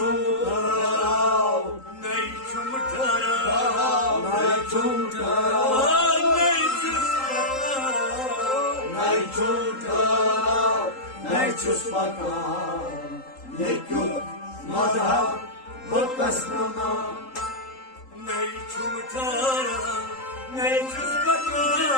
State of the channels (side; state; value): right; late; 3.8 ms